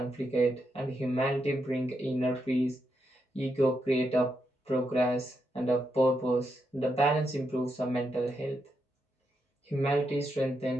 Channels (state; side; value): normal; both; correlation 0.83